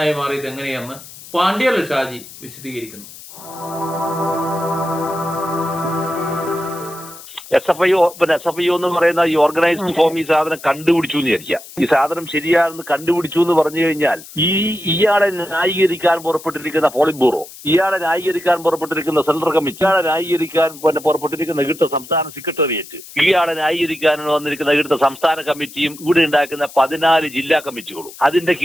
മാറിയത് എങ്ങനെയെന്ന് പാണ്ഡ്യാല ഷാജി വിശദീകരിക്കുന്നു. SFIO എന്ന് പറയുന്ന ഈ ഓർഗനൈസ്ഡ് ഫോം ഈ സാധനം കണ്ടുപിടിച്ചു എന്ന് വിചാരിക്കുക. ഈ സാധനം ശരിയാണെന്ന് കണ്ടുപിടിച്ചു എന്ന് പറഞ്ഞു കഴിഞ്ഞാൽ ഇയാളെ ന്യായീകരിക്കാൻ പുറപ്പെട്ടിരിക്കുന്ന പോളിറ്റ് ബ്യൂറോ, ഇയാളെ ന്യായീകരിക്കാൻ പുറപ്പെട്ടിരിക്കുന്ന സെൻട്രൽ കമ്മിറ്റി, ഇയാളെ ന്യായീകരിക്കാൻ പുറപ്പെട്ടിരിക്കുന്ന ഇവിടുത്തെ സംസ്ഥാന സെക്രട്ടേറിയറ്റ്, ഇയാളെ ന്യായീകരിക്കാൻ വന്നിരിക്കുന്ന ഇവിടുത്തെ സംസ്ഥാന കമ്മിറ്റിയും ഇവിടെ ഉണ്ടാക്കുന്ന 14 ജില്ലാ കമ്മിറ്റികളും അതിന്റെ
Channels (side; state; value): left; noise; hiss, 17 dB below the sound